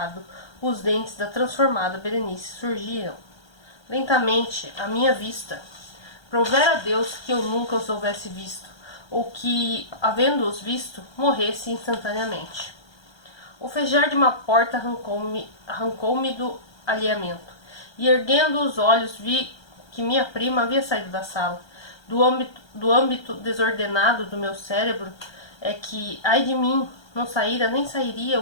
os dentes da transformada Berenice surgiram. Lentamente, à minha vista. Provera a Deus que eu nunca os houvesse visto, ou que, havendo-os visto, morresse instantaneamente. O fejar de uma porta arrancou-me do alheamento, e erguendo os olhos vi que minha prima havia saído da sala. Do âmbito desordenado do meu cérebro é que, ai de mim, não saíra nem sairia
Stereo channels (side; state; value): right; late; 1.3 ms